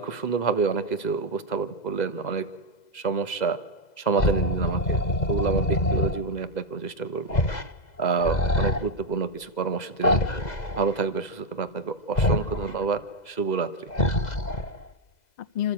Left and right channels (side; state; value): right; late; 2.0 ms